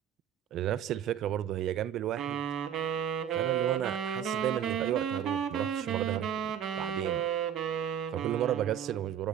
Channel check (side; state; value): left; quieter; 9.5 dB